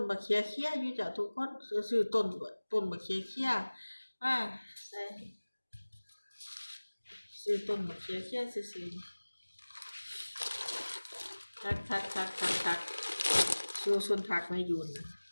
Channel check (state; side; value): inverted; both; correlation -1.00